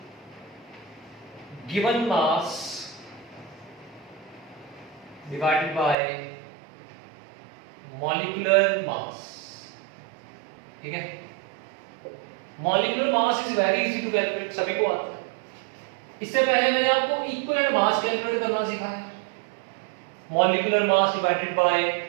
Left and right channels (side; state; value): left; drops out; at 6.0 s